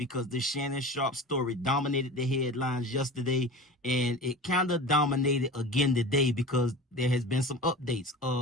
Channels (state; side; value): normal; both; correlation 0.34